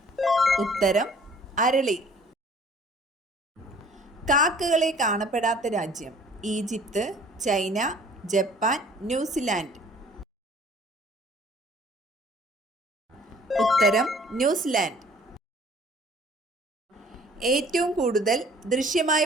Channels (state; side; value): normal; both; correlation 0.54